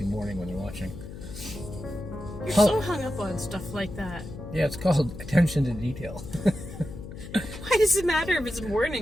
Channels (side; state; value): left; noise; hum, 12 dB below the sound